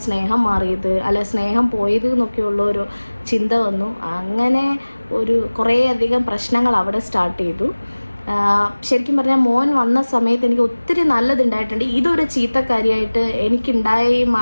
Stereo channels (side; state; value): both; inverted; correlation -1.00